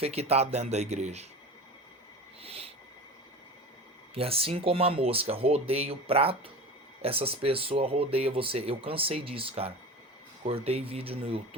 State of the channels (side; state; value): both; normal; correlation 0.32